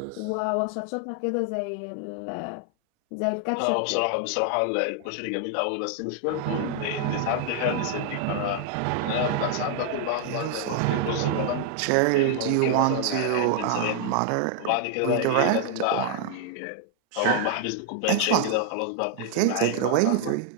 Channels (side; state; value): both; different; correlation 0.00